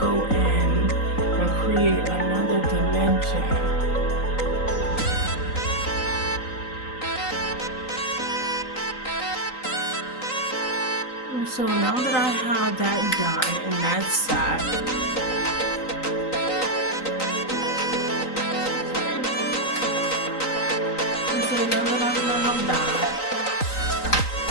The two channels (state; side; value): late; right; 3.9 ms